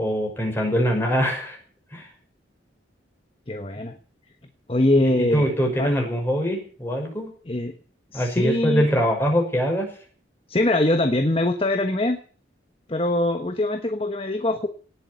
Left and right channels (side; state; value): both; normal; correlation 0.69